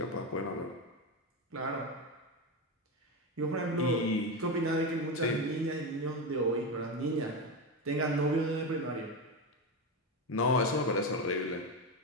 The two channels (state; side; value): normal; both; correlation 0.14